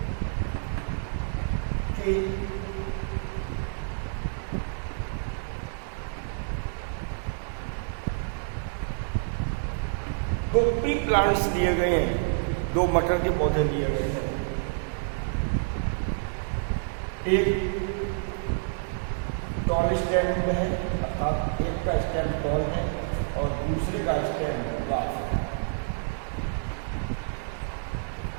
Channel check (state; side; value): silent; left; digital silence